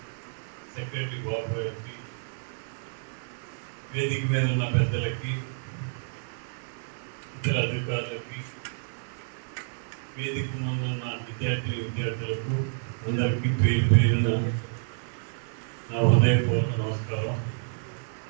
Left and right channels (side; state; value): left; silent; 59 dB below the other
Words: సెక్రటరీ బాబు గారికి, వేదిక మీద ఉన్న పెద్దలకి, ఇతర అధికారులకి, వేదిక ముందు ఉన్న విద్యార్థులకు అందరికీ పేరు పేరున నా హృదయపూర్వక నమస్కారం.